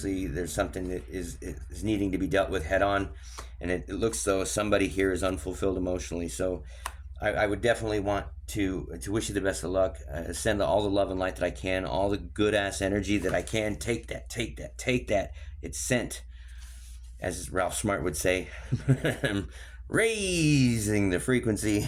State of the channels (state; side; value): identical; both; correlation 1.00